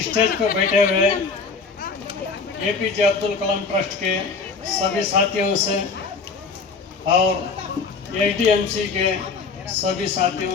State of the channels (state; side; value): quieter; right; 4.7 dB